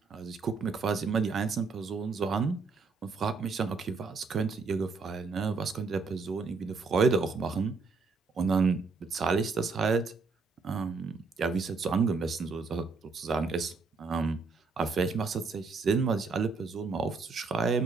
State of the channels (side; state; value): left; quieter; 4.5 dB